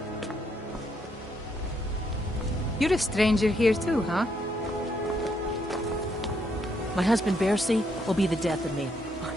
You're a stranger here too, huh? My husband Bercy will be the death of me.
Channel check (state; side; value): normal; both; correlation 0.75